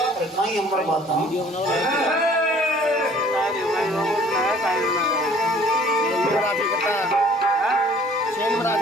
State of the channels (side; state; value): both; normal; correlation 0.53